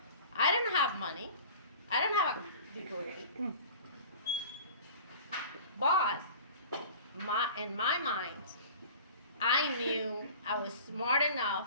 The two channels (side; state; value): both; inverted; correlation -0.41